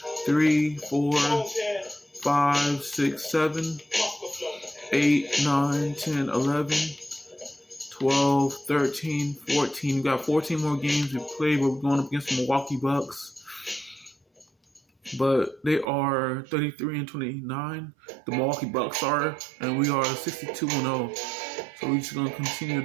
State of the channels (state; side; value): drops out; left; at 15.9 s